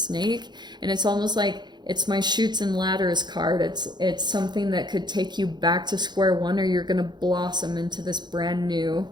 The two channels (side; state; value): left; late; 0.21 ms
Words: and it's almost like it's my Chutes and Ladders card. It's something that could take you back to square one, or you're going to blossom into this brand new